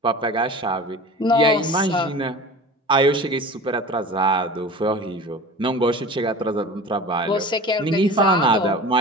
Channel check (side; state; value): both; normal; correlation 0.36